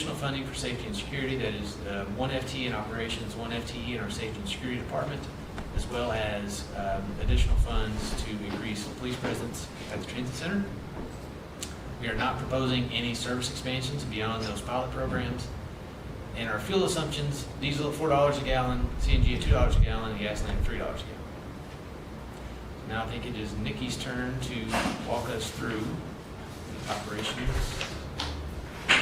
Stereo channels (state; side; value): identical; both; correlation 1.00